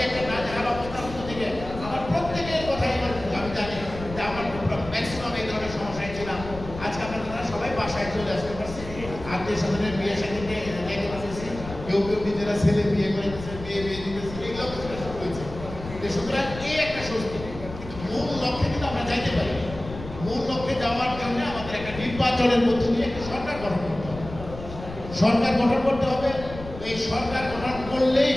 একটা নাজেহাল অবস্থার মধ্যে থেকে আমার প্রত্যেকের কথাই আমি জানি যে আমার ম্যাক্সিমাম এই ধরনের সমস্যায় ছিলাম। আজকে আপনারা সবাই বাসায় চলে আসতে পারছি, আত্মীয় স্বজনের বিয়ে সাথে যেতে পারতেছি, কেউ কেউ নিজেরা ছেলে বিয়ে করে দিতেছে, বিয়ে দিতেছে, এইগুলো শুরু হয়েছে। সুতরাং এই একটা স্বস্তি, কিন্তু মূল লক্ষ্যে কিন্তু আমরা যাইতে পারি। মূল লক্ষ্যে যাওয়ার জন্য আমাদের একটা নির্বাচনের মধ্য দিয়ে একটা সরকার গঠন করতে হবে। সরকার গঠন করতে হবে। এই সরকার গঠন করলেই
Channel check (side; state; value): left; noise; rumble, 12 dB below the sound